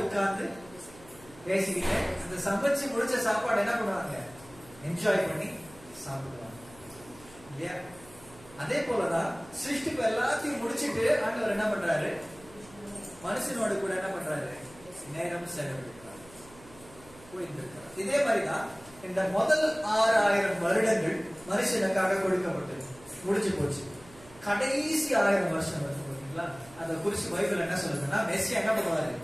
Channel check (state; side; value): noise; right; hum, 22 dB below the sound